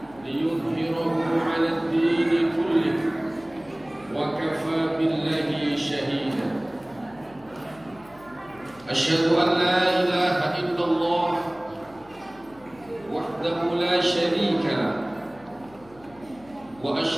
liyudhhirahu 'ala ad-din kullih wa kafaa billahi shahida. Asyhadu an la ilaha illallah wahdahu la syarika lah wa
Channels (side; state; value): left; noise; hum, 25 dB below the sound